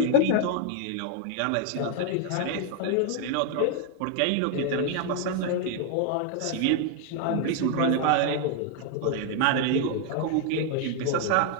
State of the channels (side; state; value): both; different; correlation 0.00